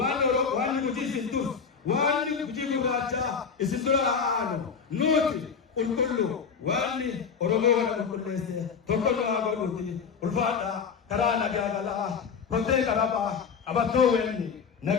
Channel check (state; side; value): quieter; right; 6.1 dB